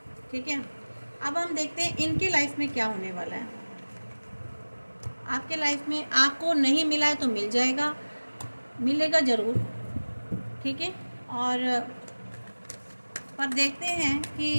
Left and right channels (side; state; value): both; inverted; correlation -1.00